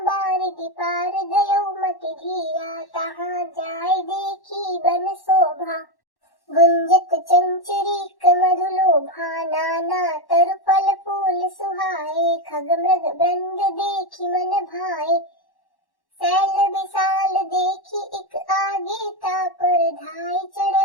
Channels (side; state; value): right; late; 1.1 ms